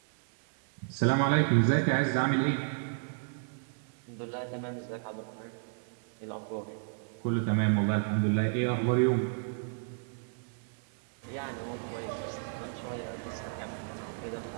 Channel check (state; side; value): silent; left; 56 dB below the other